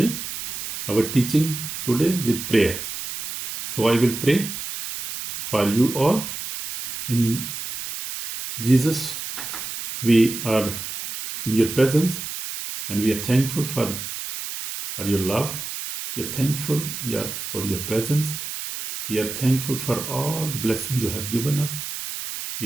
our teaching today with prayer. So, I will pray for you all. In Jesus, we are in your presence and we are thankful for your love. We are thankful for your presence. We are thankful for all the blessings you have given us.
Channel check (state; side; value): noise; right; hiss, 7 dB below the sound